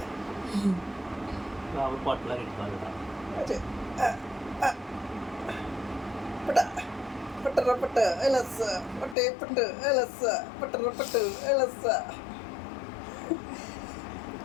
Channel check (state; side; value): drops out; right; at 9.2 s